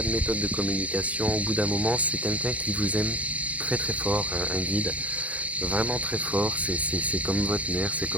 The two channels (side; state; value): left; late; 0.067 ms